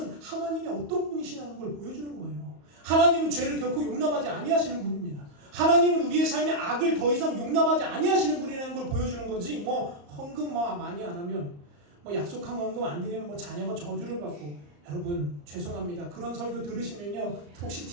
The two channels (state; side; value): late; left; 34 ms